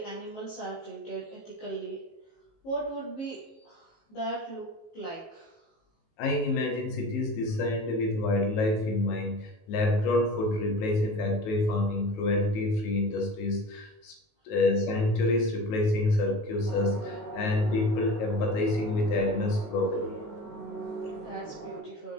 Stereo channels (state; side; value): late; right; 19 ms